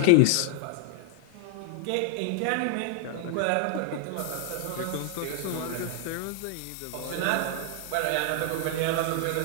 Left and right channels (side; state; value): both; different; correlation 0.00